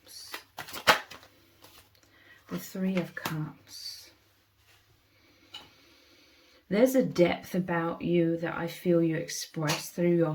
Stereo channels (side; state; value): both; identical; correlation 1.00